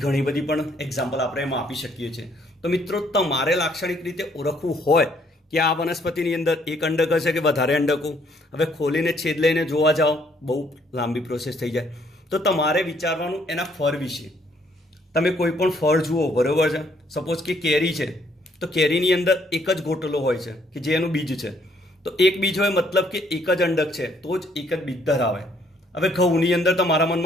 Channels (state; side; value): normal; both; correlation 0.67